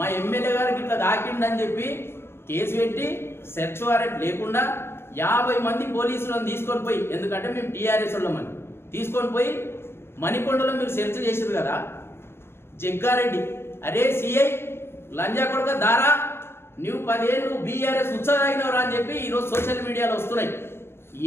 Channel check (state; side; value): late; right; 0.12 ms